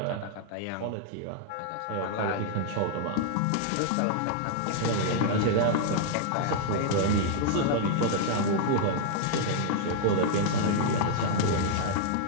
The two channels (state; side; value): different; both; correlation -0.01